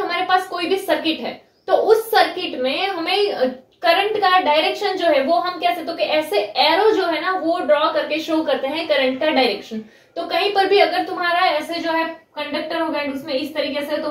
पास कोई भी सर्किट है तो उस सर्किट में हमें करंट का डायरेक्शन जो है वो हम कैसे, तो कि ऐसे एरो जो है ना वो ड्रॉ करके शो करते हैं करंट का डायरेक्शन। तो कहीं पर भी अगर तुम्हारा ऐसे जो है कंडक्टर होगा उसमें इस तरीके से, तो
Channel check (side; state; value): both; identical; correlation 1.00